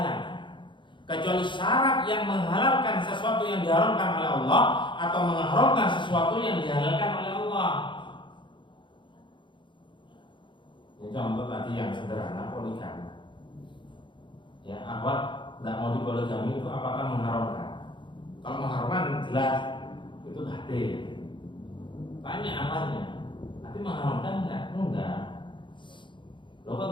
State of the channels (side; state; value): right; late; 0.23 ms